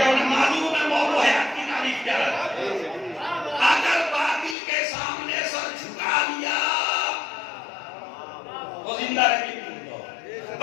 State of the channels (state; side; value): drops out; right; at 4.5 s